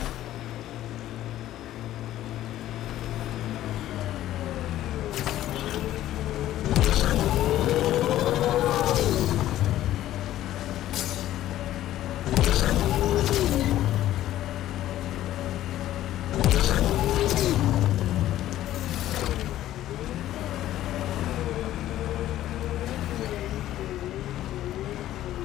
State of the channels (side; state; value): right; quieter; 13.5 dB